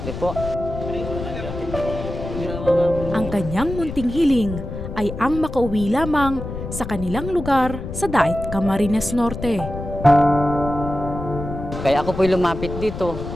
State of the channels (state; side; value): noise; left; rumble, 8 dB below the sound